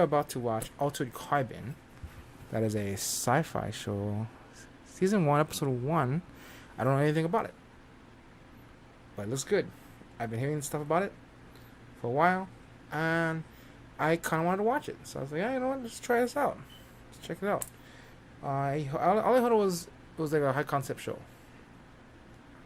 about to watch Altered Carbon. That is a sci-fi show, season one, episode one. I don't know anything about it, but it looks good. I've been hearing stuff about it for a while, and I kind of wanted to watch it. So I was like, yeah, you know what? Let's try this out. Let's check it out. All I heard was it was like a high concept show.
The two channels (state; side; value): identical; both; correlation 1.00